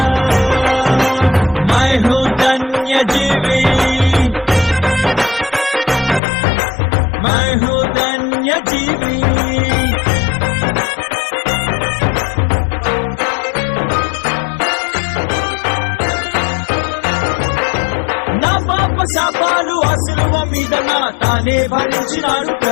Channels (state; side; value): drops out; right; at 6.2 s